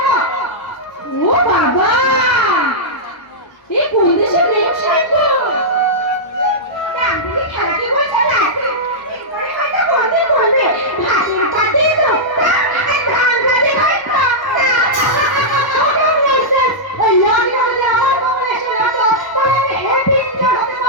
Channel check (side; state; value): right; late; 1.2 ms